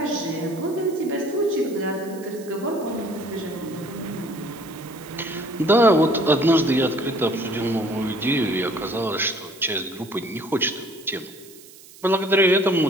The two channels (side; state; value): right; noise; hiss, 21 dB below the sound